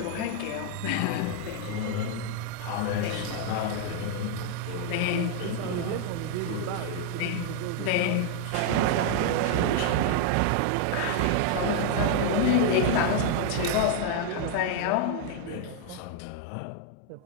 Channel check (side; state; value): both; different; correlation 0.00